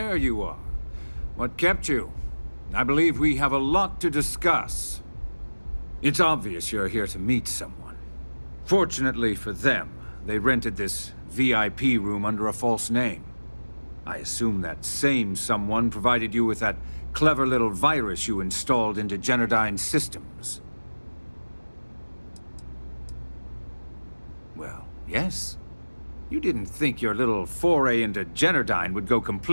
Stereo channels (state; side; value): inverted; both; correlation -1.00